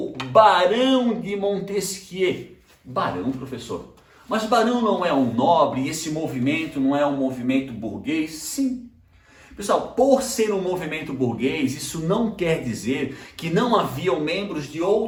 Barão de Montesquieu. Barão, professor. Mas Barão não é um nobre e esse movimento não é um movimento burguês? Sim. Pessoal, por ser um movimento burguês, isso não quer dizer que não haviam membros de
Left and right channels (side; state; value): both; identical; correlation 1.00